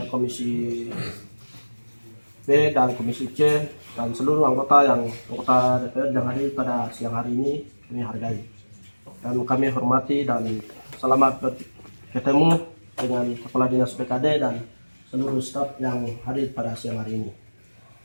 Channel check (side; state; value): both; inverted; correlation -1.00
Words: Komisi B dan Komisi C, dan seluruh anggota DPR yang hadir pada siang hari ini, kami hargai. Dan kami hormati dan selamat bertemu dengan Kepala Dinas BKD dan seluruh staf yang hadir pada siang hari ini.